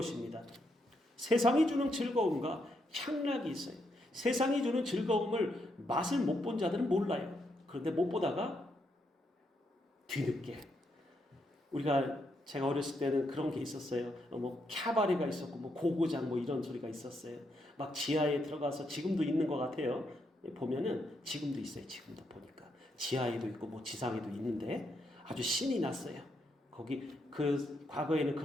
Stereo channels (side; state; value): both; normal; correlation 0.79